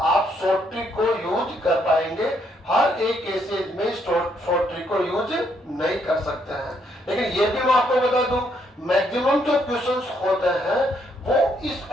शॉर्ट ट्रिक को यूज कर पाएंगे। हर एक केसेज में शॉर्ट ट्रिक को यूज नहीं कर सकते हैं। लेकिन ये भी मैं आपको बता दूं, मैक्सिमम जो क्वेश्चंस होते हैं वो इस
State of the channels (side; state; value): both; normal; correlation 0.73